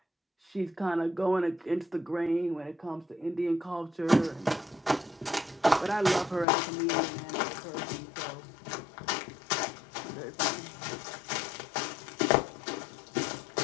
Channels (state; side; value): drops out; right; at 6.5 s